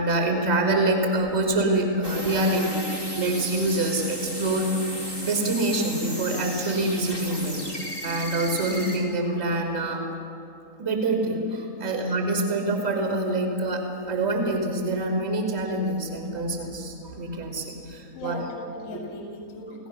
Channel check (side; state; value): right; late; 3.9 ms